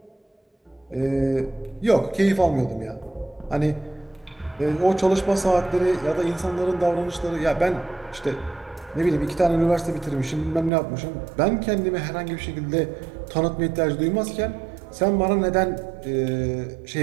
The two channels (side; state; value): left; drops out; at 10.7 s